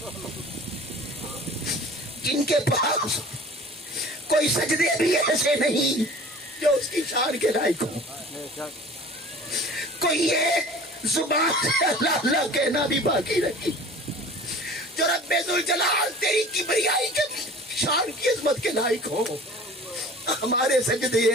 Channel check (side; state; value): both; normal; correlation 0.44